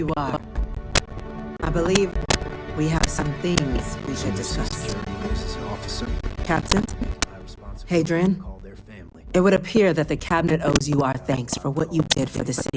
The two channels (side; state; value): both; identical; correlation 1.00